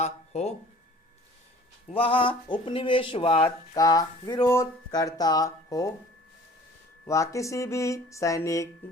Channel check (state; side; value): normal; both; correlation 0.49